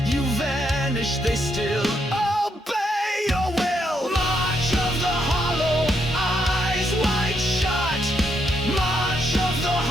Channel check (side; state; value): both; normal; correlation 0.77